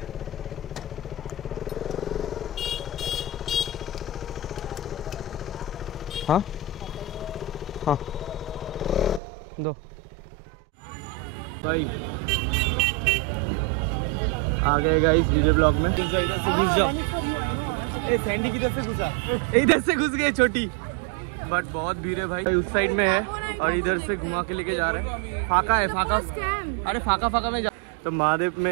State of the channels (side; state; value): left; drops out; at 9.2 s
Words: हाँ हाँ दो भाई। आ गए गाइस डीजे ब्लॉक में। इधर से घुस जाओ। ए सैंडी किधर से घुसा, इधर से घुस गए छोटी। बट बहुत भीड़ है भाई, उस साइड में है और इधर से घुमा के लेके जा रहे हैं। फाका है, फाका अरे फाका में जा। तो महादेव